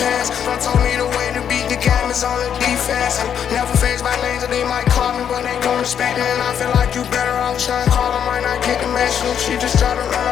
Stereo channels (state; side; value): quieter; right; 8.5 dB